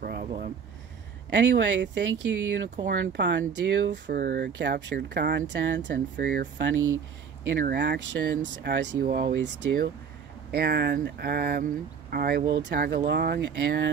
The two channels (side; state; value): left; quieter; 6.7 dB